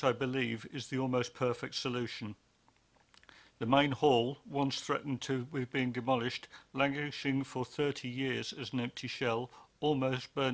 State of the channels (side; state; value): both; identical; correlation 1.00